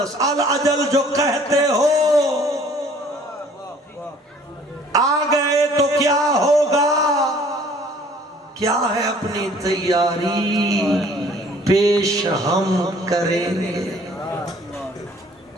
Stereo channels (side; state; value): both; normal; correlation 0.55